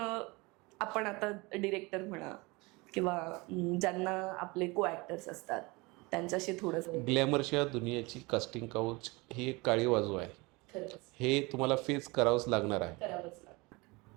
आपण आता डिरेक्टर म्हणा किंवा ज्यांना आपले को ॲक्टर्स असतात त्यांच्याशी थोडंसं. ग्लॅमरच्या दुनियाची कास्टिंग काउच ही एक काळी बाजू आहे, हे तुम्हाला फेस करावंच लागणार आहे.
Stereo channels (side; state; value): left; quieter; 25.0 dB